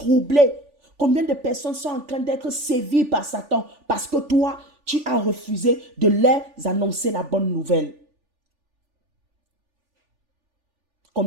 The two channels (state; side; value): late; left; 3.4 ms